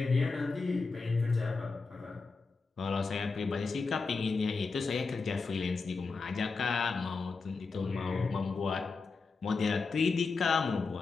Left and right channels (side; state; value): right; quieter; 4.4 dB